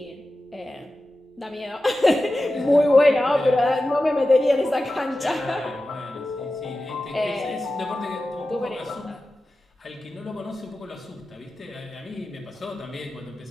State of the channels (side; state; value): both; normal; correlation 0.94